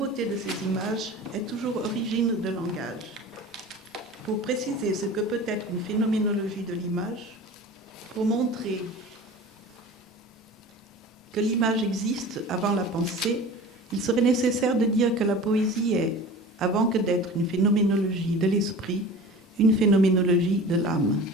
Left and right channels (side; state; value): both; normal; correlation 0.38